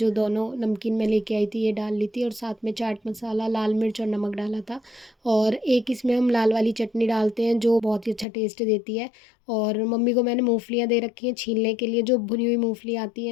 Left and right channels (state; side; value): drops out; right; at 8.2 s